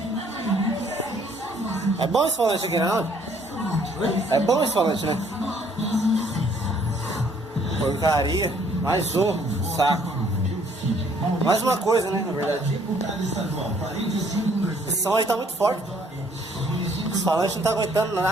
É bom esse falante aqui, não? É bom esse falante, né? Porcaria. Mais um saco. Mais uma coisa, né? Na verdade. Esse som aí tá muito forte. Esse falante não tá aguentando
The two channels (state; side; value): normal; both; correlation 0.63